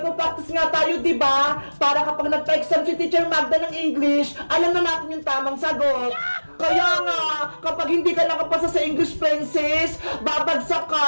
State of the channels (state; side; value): inverted; both; correlation -1.00